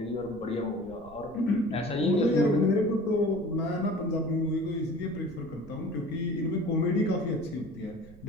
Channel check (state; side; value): noise; right; rumble, 21 dB below the sound